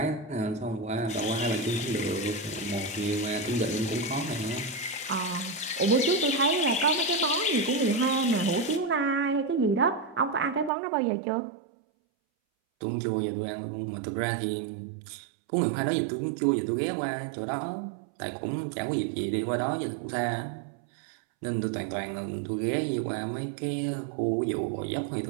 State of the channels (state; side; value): drops out; left; at 10.7 s